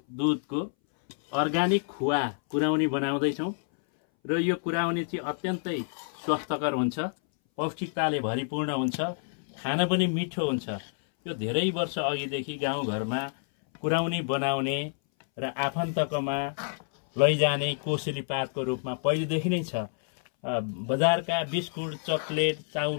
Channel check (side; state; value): right; silent; 59 dB below the other